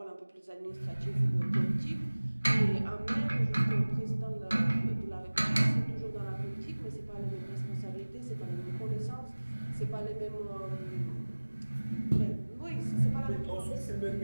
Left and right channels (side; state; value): both; inverted; correlation -1.00